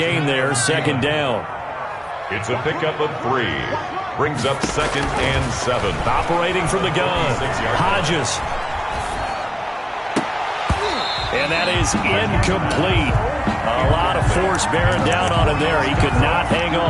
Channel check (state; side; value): identical; both; correlation 1.00